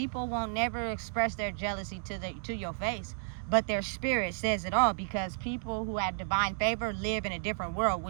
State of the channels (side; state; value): left; silent; digital silence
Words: won't never express their jealousy to your face, but their spirit says it all, because people who have divine favor live in a different world,